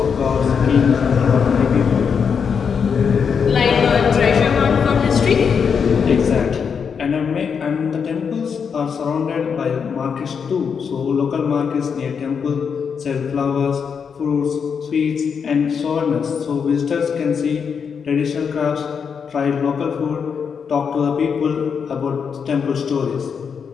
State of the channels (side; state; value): right; quieter; 6.5 dB